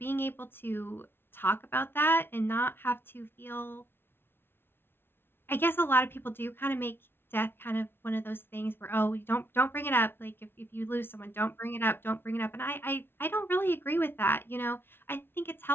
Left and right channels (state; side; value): late; right; 0.11 ms